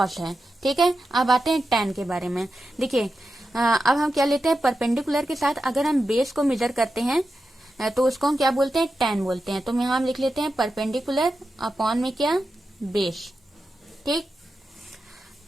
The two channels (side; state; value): both; normal; correlation 0.90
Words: है। ठीक है, अब आते हैं टैन के बारे में। देखिए अब हम क्या लेते हैं, परपेंडिकुलर के साथ अगर हम बेस को मेजर करते हैं तो उसको हम क्या बोलते हैं, टैन बोलते हैं। तो यहाँ हम लिख लेते हैं परपेंडिकुलर अपॉन में क्या, बेस। ठीक,